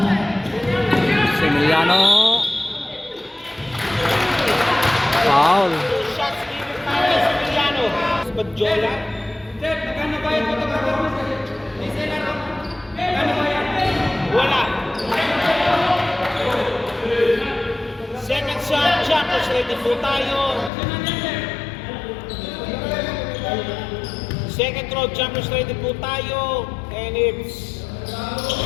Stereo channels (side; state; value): right; drops out; at 20.7 s